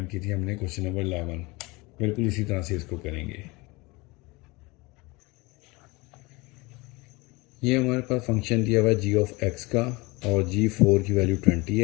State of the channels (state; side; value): quieter; right; 24.3 dB